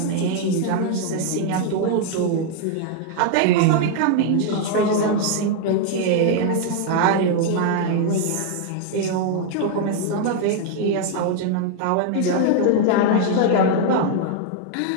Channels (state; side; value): different; both; correlation 0.00